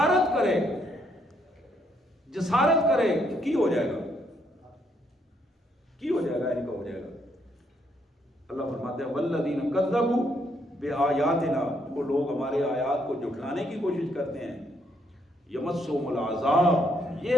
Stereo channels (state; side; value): normal; both; correlation 0.73